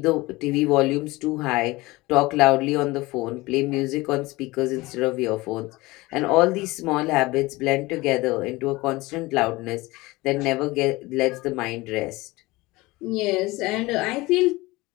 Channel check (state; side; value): quieter; right; 21.1 dB